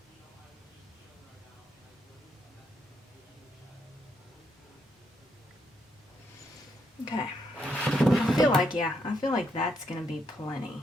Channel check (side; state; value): both; normal; correlation 0.77